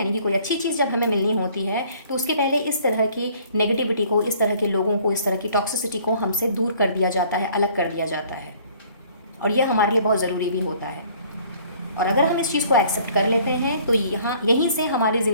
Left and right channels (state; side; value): inverted; both; correlation -0.57